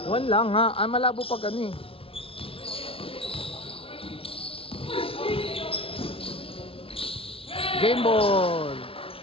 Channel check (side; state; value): right; late; 0.26 ms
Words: One lang ha. Ah, malabo pag ano eh. Game ball.